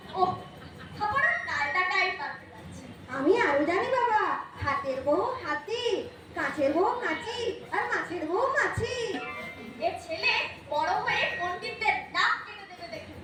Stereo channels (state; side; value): identical; both; correlation 1.00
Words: ও খাবার টাইটাটাই পাল্টে যাচ্ছে। আমি আরো জানি বাবা, হাতের বউ হাতি, কাঁচের বউ কাঁচি, আর মাছের বউ মাছি। এ ছেলে বড় হয়ে পণ্ডিতদের নাক কেটে দেবে দেখে।